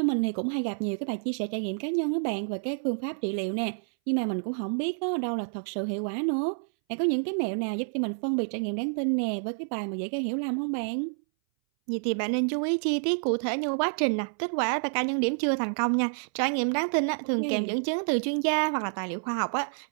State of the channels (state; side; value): silent; left; 59 dB below the other